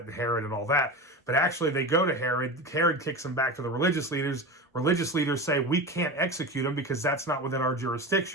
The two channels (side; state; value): both; normal; correlation 0.26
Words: and Herod and all that. But actually they go to Herod. Herod kicks them back to the religious leaders. Religious leaders say, we can't execute him because that's not within our